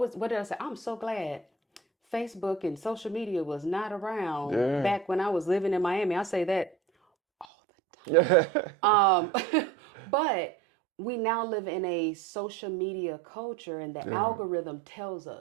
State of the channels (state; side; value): drops out; left; at 7.5 s